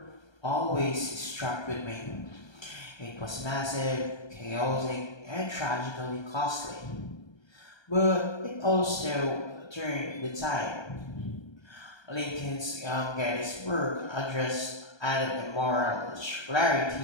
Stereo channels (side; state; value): right; late; 1.3 ms